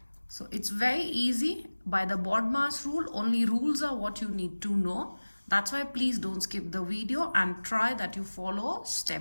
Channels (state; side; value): inverted; both; correlation -1.00